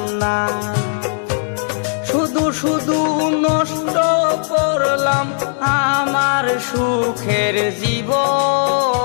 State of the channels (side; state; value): right; silent; 62 dB below the other